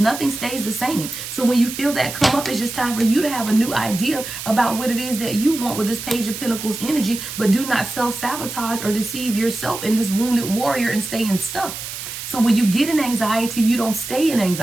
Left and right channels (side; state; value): right; noise; hiss, 8 dB below the sound